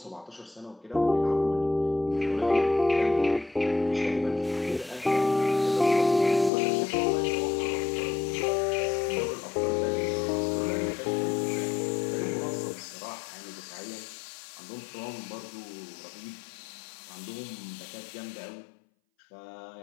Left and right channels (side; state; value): right; drops out; at 6.5 s